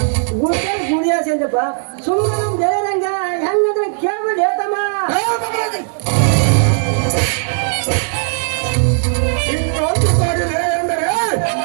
ಗುಡಿಯಾಸಿ ಅಂತಪ್ಪ. ಸುಮ್ಮನೆ ನಮ್ ದೇವರಂಗ ಹೆಂಗಂದ್ರೆ ಕೇಳ್ಬಿಡಿ ತಮ್ಮ. ಇನ್ನೊಂದು ಸಾಗಿದೆ ಎಂದರೆ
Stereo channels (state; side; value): silent; left; digital silence